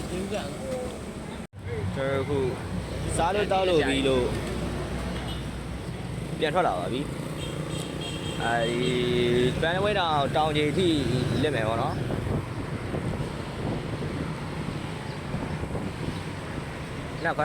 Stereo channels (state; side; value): identical; both; correlation 1.00